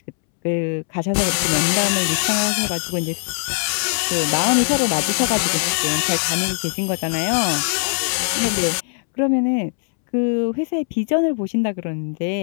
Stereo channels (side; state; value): right; silent; 65 dB below the other